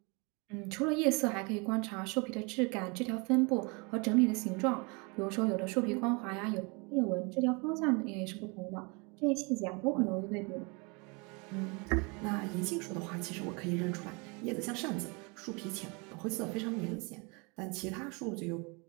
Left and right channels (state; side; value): quieter; left; 30.4 dB